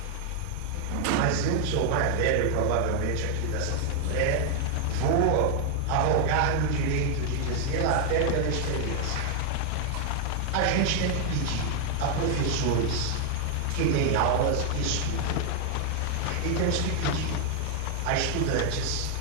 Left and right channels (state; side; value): different; both; correlation 0.00